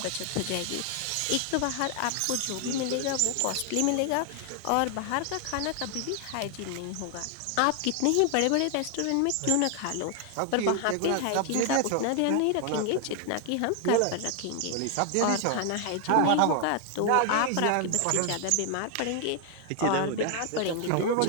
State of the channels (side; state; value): both; different; correlation 0.00